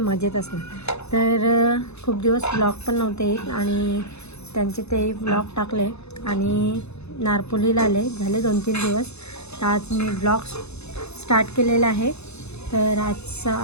असणार. तर खूप दिवस ब्लॉग पण नव्हते येत आणि त्यांचे ते ब्लॉग टाकले आणि नारपोलीला आले झाले 2-3 दिवस. तर आज मी ब्लॉग स्टार्ट केलेला आहे. तर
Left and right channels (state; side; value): late; right; 0.80 ms